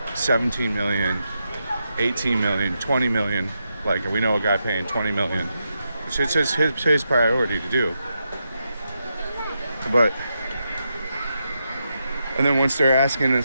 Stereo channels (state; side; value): inverted; both; correlation -0.85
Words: 17 million, 18 million, 20 million, like we know a guy paying 20 million, it's just his priority to do. And then once they're asking